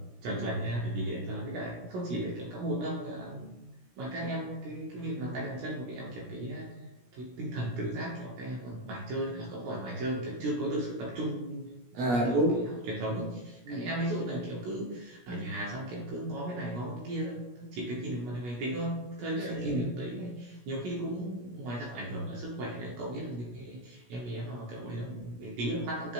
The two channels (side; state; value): left; late; 17 ms